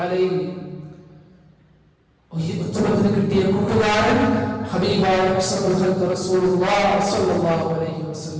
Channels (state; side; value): identical; both; correlation 1.00